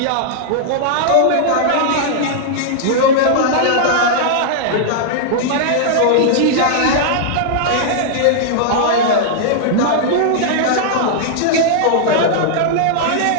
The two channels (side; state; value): both; different; correlation -0.01